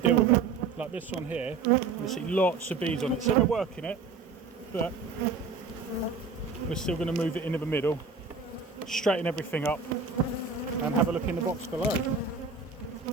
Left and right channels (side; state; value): left; quieter; 4.8 dB